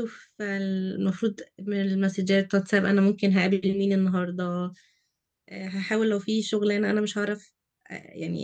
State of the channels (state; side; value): identical; both; correlation 1.00